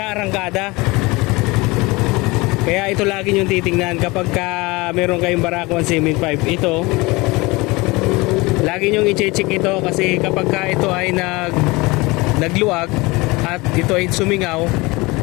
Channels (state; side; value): quieter; right; 23.5 dB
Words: Kaya ito lagi yung titingnan kapag meron kayong Barako 175. Ito lagi nyo i-check ito, kasi kapag ito ay nagluwag at ito ay sumingaw,